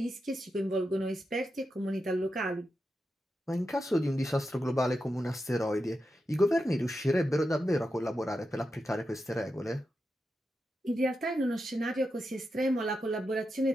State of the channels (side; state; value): both; normal; correlation 0.88